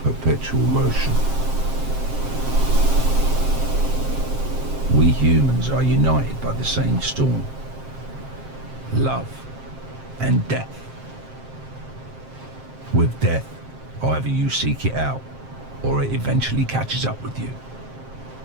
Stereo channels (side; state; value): left; late; 7.6 ms